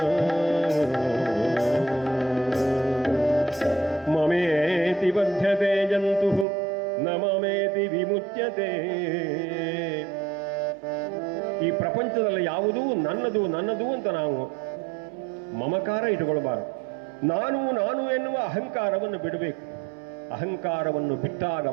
ಮಮೇತಿ ಬಧ್ಯತೆ ಜಂತು ನ ಮಮೇತಿ ವಿಮುಚ್ಯತೆ. ಈ ಪ್ರಪಂಚದಲ್ಲಿ ಯಾವುದೂ ನನ್ನದು ನನ್ನದು ಅಂತ ನಾವು ಮಮಕಾರ ಇಟ್ಟುಕೊಳ್ಬಾರದು. ನಾನು ನಾನು ಎನ್ನುವ ಅಹಂಕಾರವನ್ನು ಬಿಡಬೇಕು. ಅಹಂಕಾರವನ್ನು ಬಿಟ್ಟಾಗ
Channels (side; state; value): left; drops out; at 6.5 s